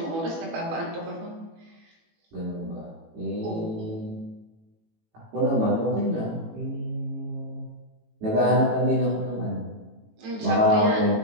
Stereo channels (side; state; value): left; late; 18 ms